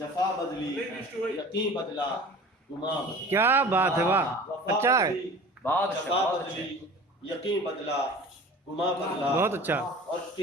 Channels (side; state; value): both; normal; correlation 0.41